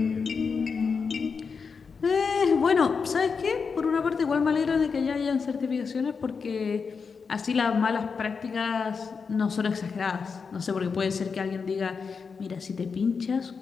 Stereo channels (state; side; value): quieter; right; 5.4 dB